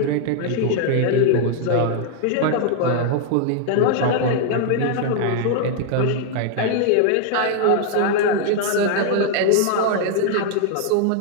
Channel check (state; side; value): different; both; correlation 0.00